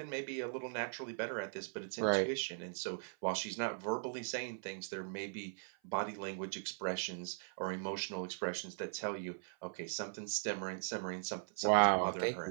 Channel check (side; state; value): left; silent; 52 dB below the other